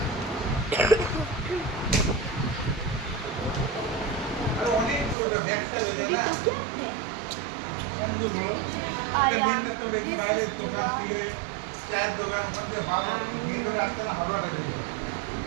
तो क्या है? This is Dua.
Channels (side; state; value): left; drops out; at 5.2 s